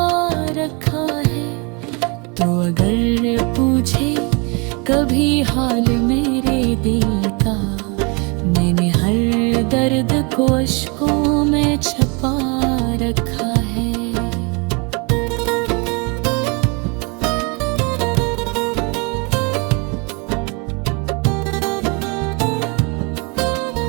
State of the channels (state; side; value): quieter; left; 31.3 dB